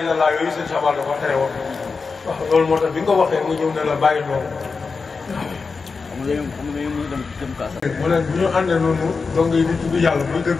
yooyu sëñ Sabal dafa tere woon. waaw loolu moo tax bi nga waxee mu ñëw ne la bàyyi loolu. xam nga ñu dem kaasa. mu ne bu ñu àndee noonu donc yi di tudd yàlla buy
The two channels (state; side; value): quieter; right; 4.7 dB